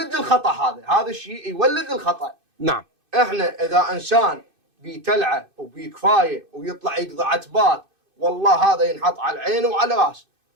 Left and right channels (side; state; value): left; late; 2.5 ms